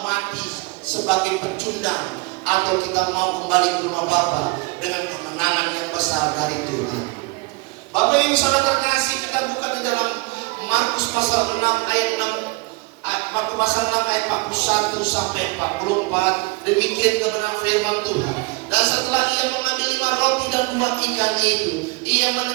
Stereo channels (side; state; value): left; quieter; 25.6 dB